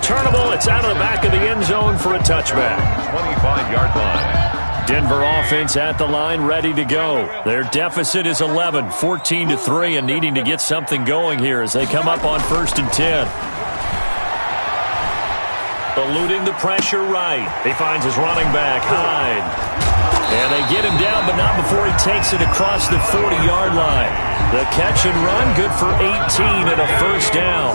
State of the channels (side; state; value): both; inverted; correlation -1.00